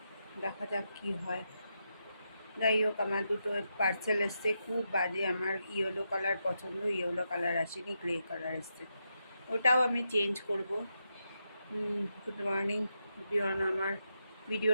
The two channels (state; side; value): inverted; both; correlation -0.85